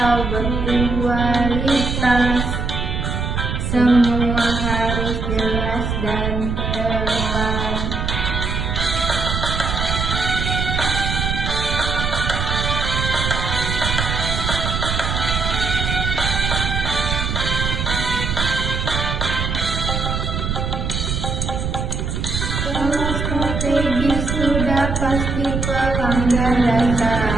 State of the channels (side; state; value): right; noise; rumble, 2 dB below the sound